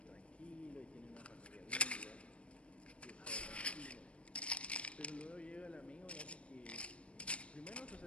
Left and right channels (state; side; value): late; right; 0.061 ms